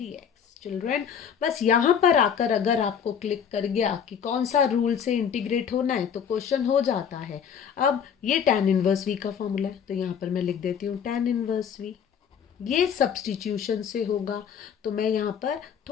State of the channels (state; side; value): quieter; right; 7.7 dB